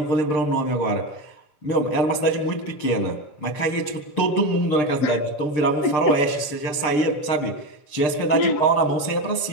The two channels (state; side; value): late; right; 6.7 ms